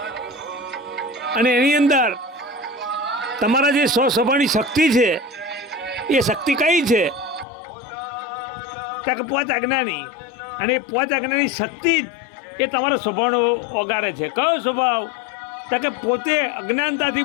અને એની અંદર તમારા જે સ્વભાવની શક્તિ છે એ શક્તિ કઈ છે ત્યાં કે પોત આજ્ઞાની, અને એ પોત આજ્ઞાની શક્તિ જ એ તમારો સ્વભાવનો ઓગારે છે. કયો સ્વભાવ? તો કે પોતે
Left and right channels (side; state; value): right; drops out; at 7.5 s